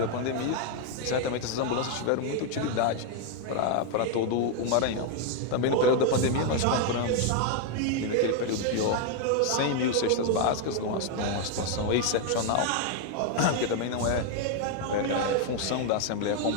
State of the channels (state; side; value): different; both; correlation 0.01